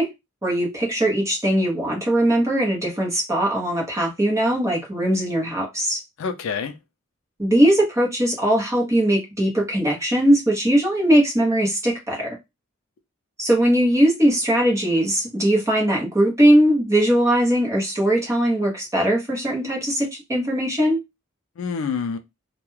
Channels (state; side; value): normal; both; correlation 0.80